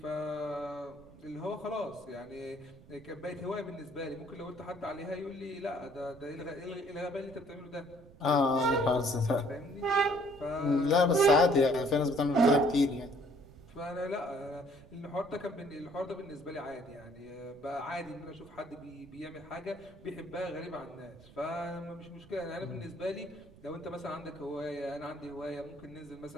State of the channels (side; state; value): right; noise; rumble, 22 dB below the sound